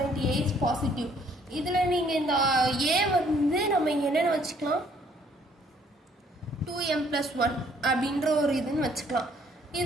A is positive. இதில் நீங்கள் இந்த A வந்து நம்ம என்னென்னு வச்சுக்கலாம் 2m plus 1 அப்படின்ற ஒரு இதுன்னு வச்சுக்கலாம்.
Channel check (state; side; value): normal; both; correlation 0.63